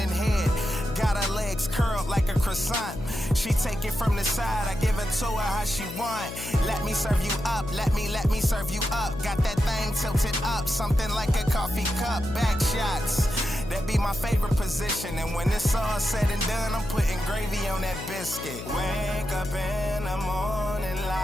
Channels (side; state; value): left; noise; hum, 10 dB below the sound